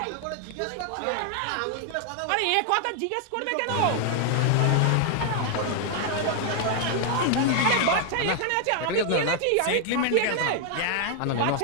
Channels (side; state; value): both; different; correlation 0.00